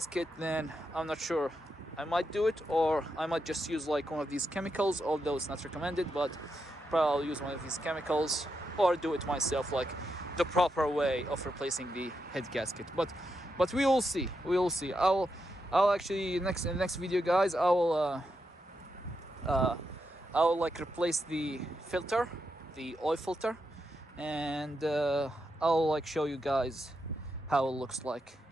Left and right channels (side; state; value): both; normal; correlation 0.84